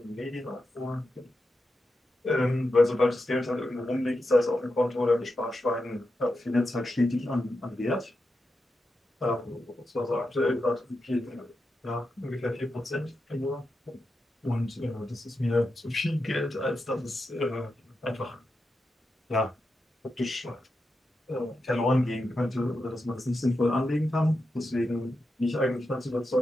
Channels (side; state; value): both; normal; correlation 0.88